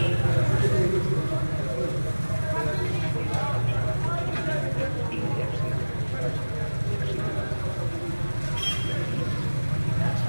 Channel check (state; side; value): inverted; both; correlation -1.00